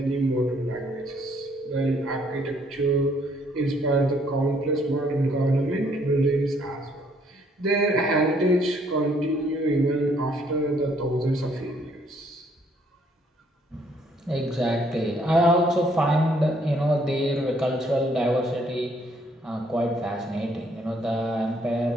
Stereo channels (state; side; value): normal; both; correlation 0.66